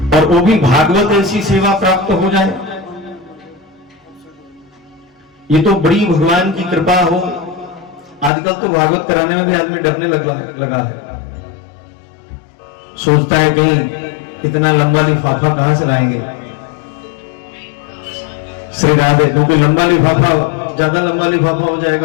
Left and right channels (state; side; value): drops out; right; at 8.3 s